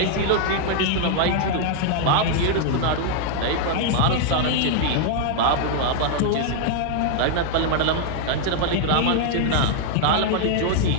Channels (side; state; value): both; different; correlation 0.00